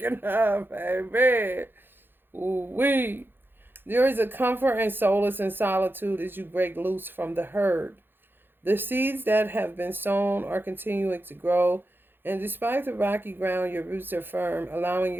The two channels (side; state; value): left; late; 0.10 ms